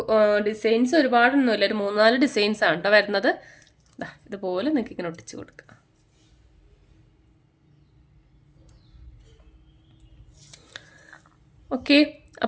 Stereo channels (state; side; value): identical; both; correlation 1.00